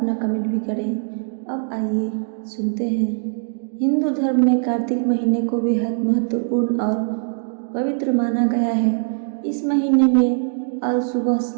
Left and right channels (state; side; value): silent; left; digital silence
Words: कमेंट भी करें। अब आइए सुनते हैं। हिंदू धर्म में कार्तिक महीने को बेहद महत्वपूर्ण और पवित्र माना गया है। इस महीने में आज सुबह